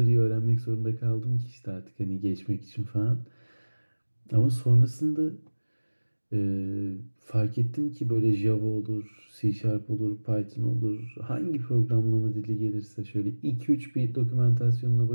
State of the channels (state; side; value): inverted; both; correlation -1.00